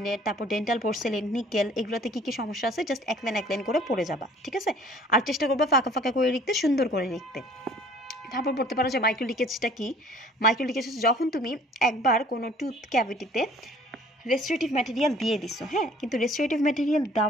তারপর ডেন্টাল পোর্সেলিন, নিকেল, এগুলোতে কি কি সমস্যা আছে জাস্ট এক লাইন করে পড়ে যাবা, ঠিক আছে? আর চেষ্টা করবা ফাঁকা ফাঁকা করে লিখতে, সুন্দর করে লিখতে। তারপর পড়তে পারো যে মাইক্রো লিকেজটা কি। মাইক্রো লিকেজ যখন তুমি একবার কোনো টুথ ক্যাভিটিতে রেস্টোরেটিভ ম্যাটেরিয়াল দিয়ে দিছো, হ্যাঁ, কিন্তু রেস্টোরেটিভ ম্যাটেরিয়াল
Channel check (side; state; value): both; normal; correlation 0.53